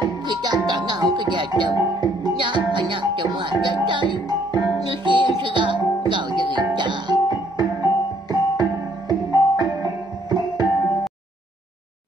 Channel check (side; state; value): both; normal; correlation 0.66